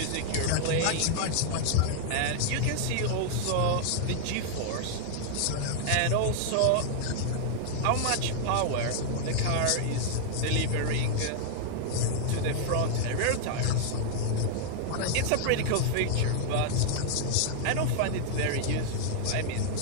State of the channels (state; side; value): different; both; correlation -0.01